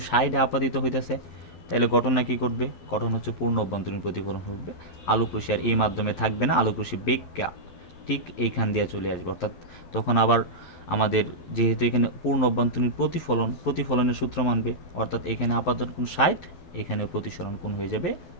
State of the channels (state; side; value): late; right; 11 ms